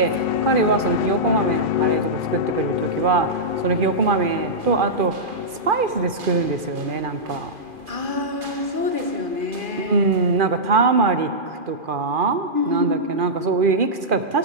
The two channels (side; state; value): left; late; 2.4 ms